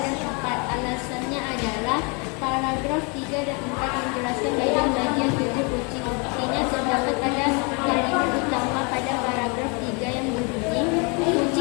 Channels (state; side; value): quieter; right; 32.5 dB